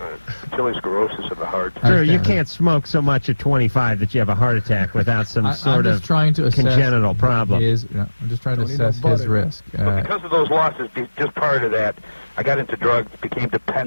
sclerosis of the heart. I Drew, you understand. can't smoke so much at 25 that you have a heart attack without some I'm sort just of trying to assess congenital problem. I'm just trying to Don't need no assess his butter. risk. But because of those losses, just prior to that, I got into drugs, became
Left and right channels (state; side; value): inverted; both; correlation -1.00